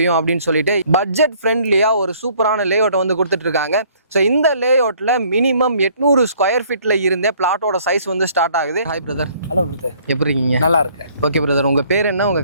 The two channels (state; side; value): inverted; both; correlation -0.59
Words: அப்படின்னு சொல்லிட்டு பட்ஜெட் ஃப்ரெண்ட்லியாக ஒரு சூப்பரான லேஅவுட்டை வந்து கொடுத்துட்டு இருக்காங்க. ஸோ இந்த லேஅவுட்டில் மினிமம் 800 ஸ்கொயர் ஃபீட்டில் இருந்தே பிளாட்டோட சைஸ் வந்து ஸ்டார்ட் ஆகுது. Hi brother. ஹலோ பிரதர், எப்படி இருக்கீங்க? நல்லா இருக்கேன். ஓகே பிரதர், உங்கள் பேர் என்ன,